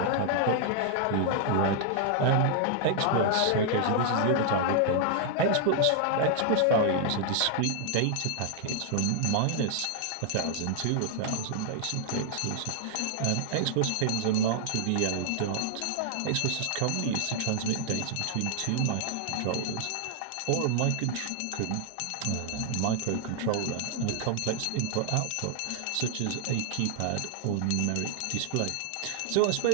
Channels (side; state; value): both; different; correlation 0.00